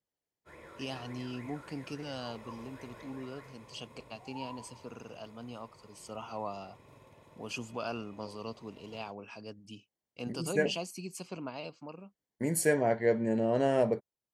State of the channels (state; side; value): identical; both; correlation 1.00